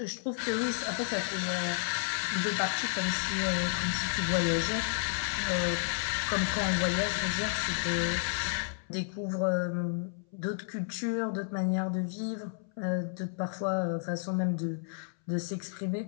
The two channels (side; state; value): right; silent; 57 dB below the other